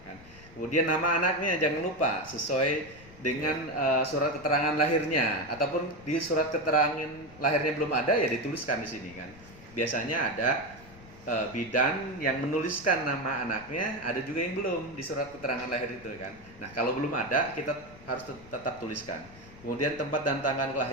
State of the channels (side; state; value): left; noise; rumble, 21 dB below the sound